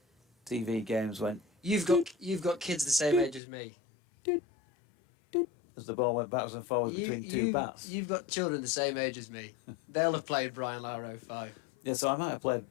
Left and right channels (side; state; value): right; drops out; at 3.4 s